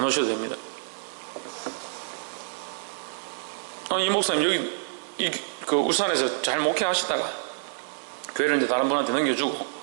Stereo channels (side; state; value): left; silent; digital silence